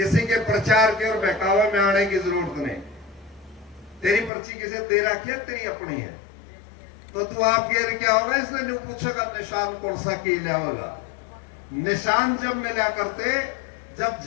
के प्रचार के और बहकावे में आने की जरूरत नहीं। तेरी पर्ची किसे दे रखी है, तेरी अपनी है, तो तू आप गिर क्या होगा, इसलिए नहीं पूछेगा निशान कौन सा की लिया होगा। निशान जब मिला करते, जब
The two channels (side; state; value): right; drops out; at 4.3 s